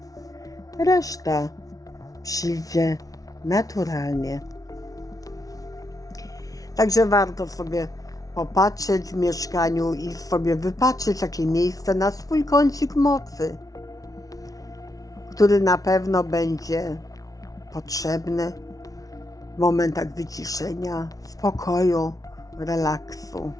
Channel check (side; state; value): right; late; 0.18 ms